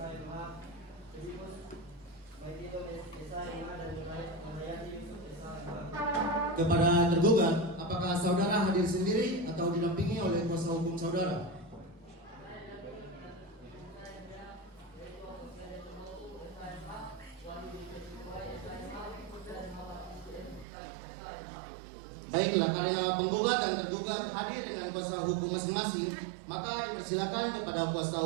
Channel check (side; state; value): left; drops out; at 20.7 s